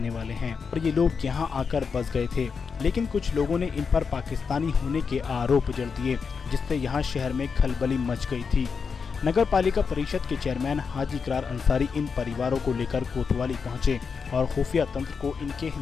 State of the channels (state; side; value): quieter; right; 5.6 dB